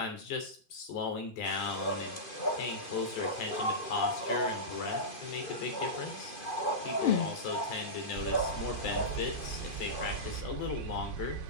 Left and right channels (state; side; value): late; right; 2.5 ms